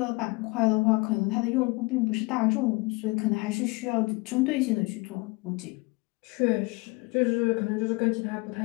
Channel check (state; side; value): quieter; right; 25.8 dB